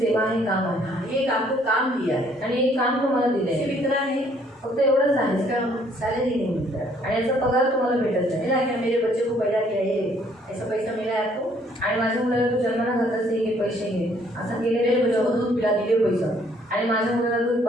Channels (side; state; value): both; normal; correlation 0.63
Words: आहे, काम आहे. एक आपको काम दिया है. आणि एक काम तुम्हाला दिलंय. सिर्फ इतना है, फक्त एवढंच आहे. इसका सैलरी नहीं मिलता है. आणि याचा पगार तुम्हाला भेटत नाही. मिला क्या? मेरे बच्चे को पैदा किया, ये ऐसा पैसा मिला है आपको? आणि माझ्या मुलाला तू जन्माला घातलंस, हे घे पैसे घे असं मेरे केलेलं बच्चों को दूध पिला दिए पैसा, आणि माझ्या मुलाला तू